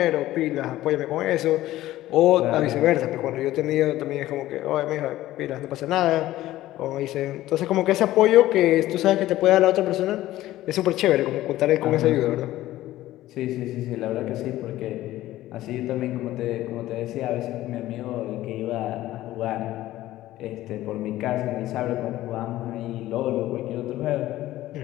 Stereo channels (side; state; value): right; quieter; 15.2 dB